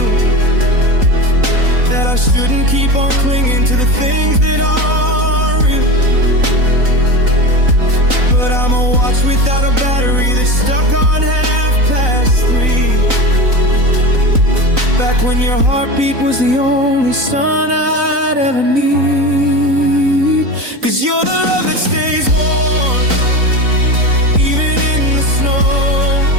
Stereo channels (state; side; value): late; left; 3.9 ms